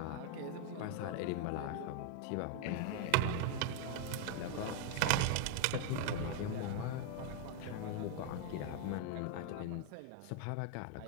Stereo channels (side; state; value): both; different; correlation 0.00